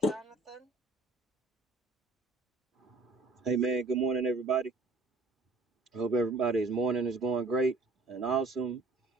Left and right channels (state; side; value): quieter; left; 3.4 dB